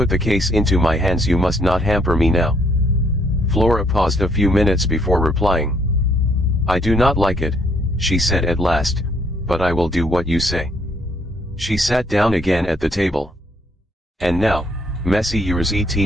the case into my hands, you must not hamper me now. Flora paused a few minutes before replying. I do not like it, she said at last, but I will do what you say. She sat down again at the table. And now, Messieurs et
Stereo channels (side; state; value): both; normal; correlation 0.68